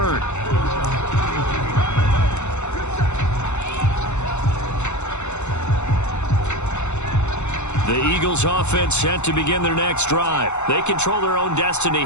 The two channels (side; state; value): right; late; 0.83 ms